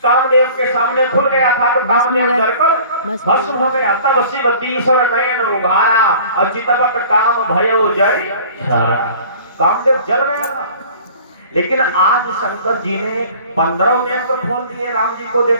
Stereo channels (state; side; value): inverted; both; correlation -0.47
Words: कामदेव के सामने खुल गया था तो कामदेव डरकर भस्म हो गया। तब शिव तीसर नयन उभारा और चितवत काम भयो जय कामदेव जल गया था। लेकिन आज शंकर जी ने 15 नेत्र खोल दिए राम जी को